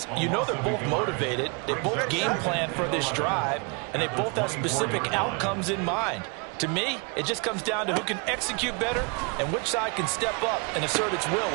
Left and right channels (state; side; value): quieter; left; 32.8 dB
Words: you know they're both motivated. They both game plan for this drive, and they both have specific outcomes in mind. To me, it just comes down to who can execute better and which side can step up and assert its will